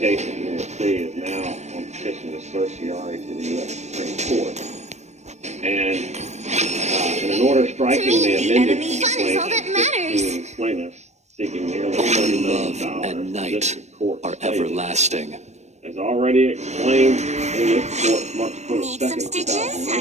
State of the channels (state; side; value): late; left; 0.33 ms